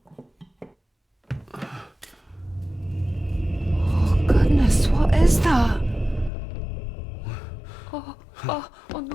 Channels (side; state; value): right; drops out; at 6.3 s